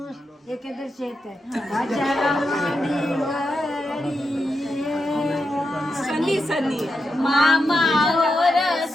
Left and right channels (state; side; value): normal; both; correlation 0.86